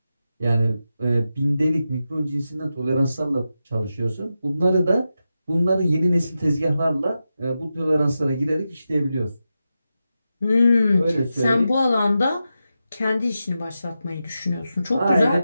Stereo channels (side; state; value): both; inverted; correlation -0.90